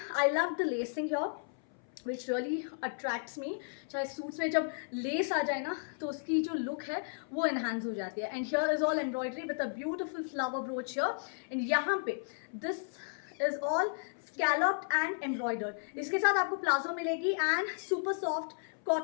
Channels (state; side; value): silent; right; 55 dB below the other